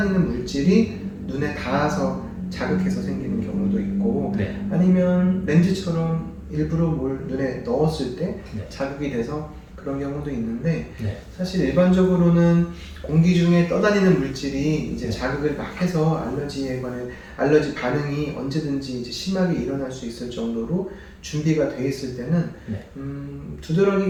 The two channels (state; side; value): identical; both; correlation 1.00